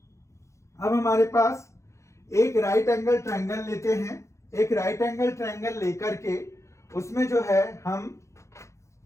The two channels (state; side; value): late; right; 0.14 ms